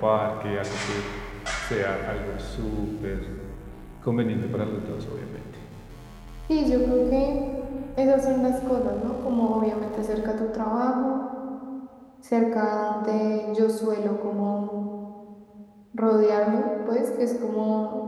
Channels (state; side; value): identical; both; correlation 1.00